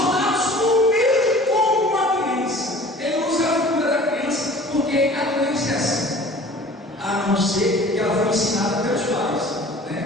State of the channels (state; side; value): normal; both; correlation 0.46